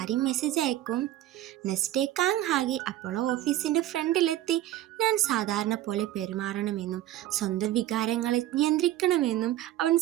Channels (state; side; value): quieter; left; 13.7 dB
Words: മെസ്സേജ് അയക്കും. നെക്സ്റ്റ് ഡേ ഹാഗി അപ്പോളോ ഓഫീസിൻ്റെ ഫ്രണ്ടിലെത്തി ഞാൻ സാധാരണ പോലെ പെരുമാറണമെന്നും സ്വന്തം വികാരങ്ങളെ നിയന്ത്രിക്കണമെന്നും അവൻ